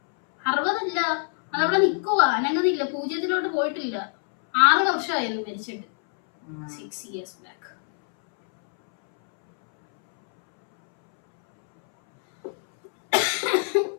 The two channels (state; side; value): silent; right; 63 dB below the other